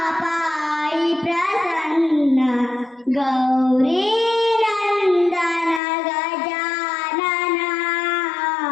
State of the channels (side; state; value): right; drops out; at 5.8 s